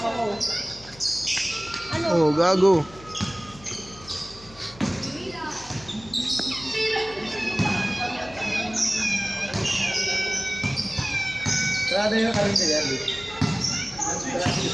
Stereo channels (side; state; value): left; noise; hum, 20 dB below the sound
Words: Oh, gago. Sarado yung karinyo yan eh.